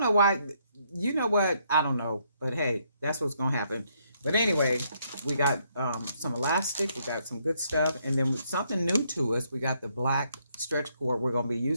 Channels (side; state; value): both; inverted; correlation -0.72